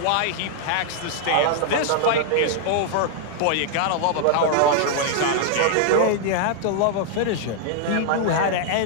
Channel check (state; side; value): different; both; correlation -0.01